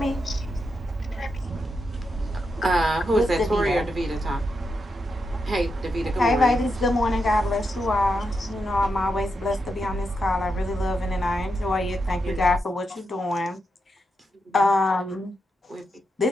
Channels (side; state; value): both; normal; correlation 0.85